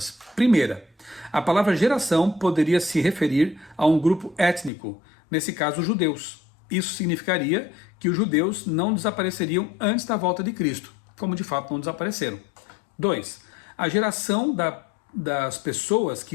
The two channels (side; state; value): right; drops out; at 4.7 s